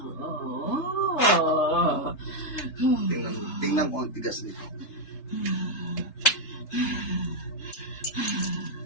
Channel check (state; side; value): late; right; 3.3 ms